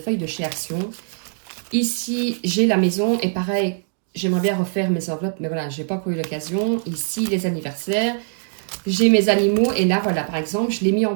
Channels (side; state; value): left; silent; digital silence